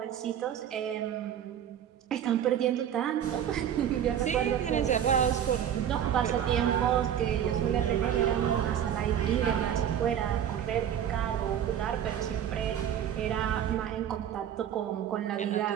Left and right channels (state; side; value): quieter; left; 9.7 dB